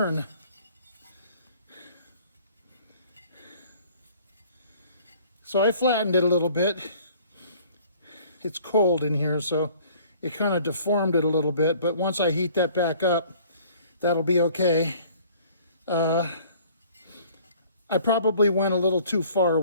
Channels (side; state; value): both; inverted; correlation -0.53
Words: So I flattened it a little bit. It's cold in here, so it kind of deformed it a little bit, but once I heat that back up, that'll be okay. I probably went a little too far